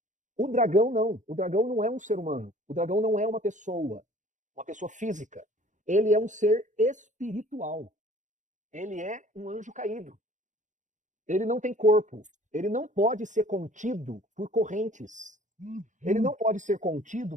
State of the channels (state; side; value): late; left; 0.36 ms